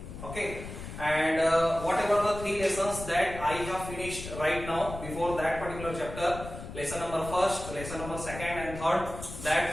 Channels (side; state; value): left; noise; rumble, 10 dB below the sound